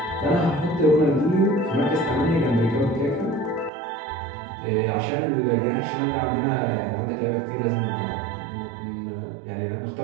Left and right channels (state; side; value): drops out; left; at 3.7 s